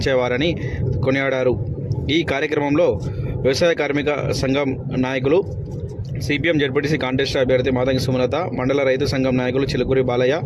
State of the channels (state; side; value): identical; both; correlation 1.00